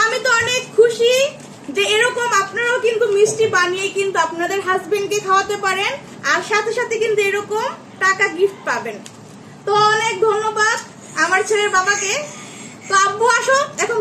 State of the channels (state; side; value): identical; both; correlation 1.00